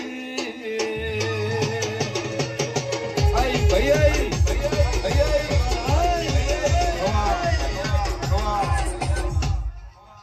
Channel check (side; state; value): both; identical; correlation 1.00